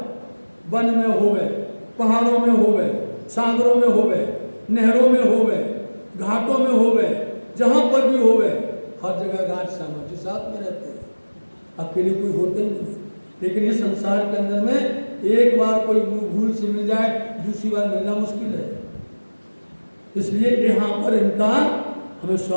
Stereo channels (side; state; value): both; inverted; correlation -1.00